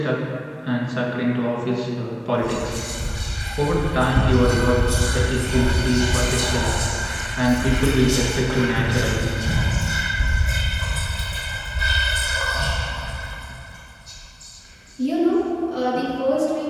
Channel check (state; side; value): identical; both; correlation 1.00